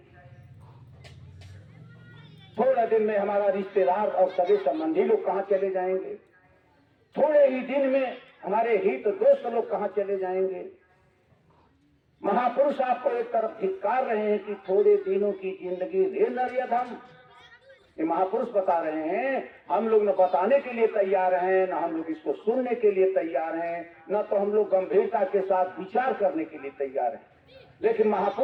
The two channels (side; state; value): both; identical; correlation 1.00